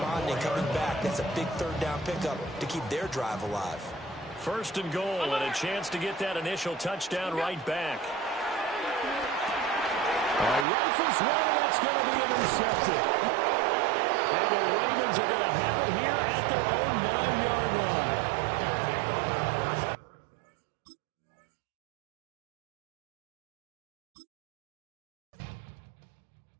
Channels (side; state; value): left; drops out; at 10.7 s